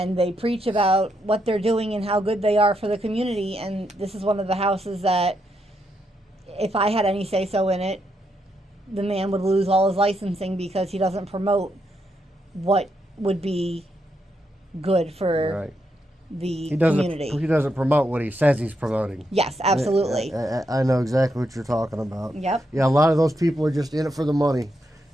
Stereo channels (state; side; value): normal; both; correlation 0.80